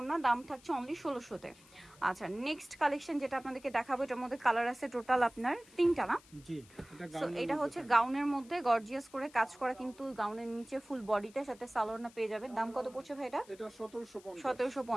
দাম থাকছে অনলি 1600-তে। আচ্ছা, নেক্সট কালেকশন যেটা আপনাদেরকে দেখাবো, এটার মধ্যে কালার আছে টোটাল আপনার তিনটা না? জি, সো এটা হচ্ছে গাউনের মধ্যে গর্জিয়াস করে কাজ করা, কিন্তু গাউনের নিচে ফুল বডিটার সাথে সালোয়ার পেয়ে যাবেন। দাম কত পড়ছে ভাই এটা? এটা 1750।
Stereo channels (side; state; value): left; noise; hiss, 25 dB below the sound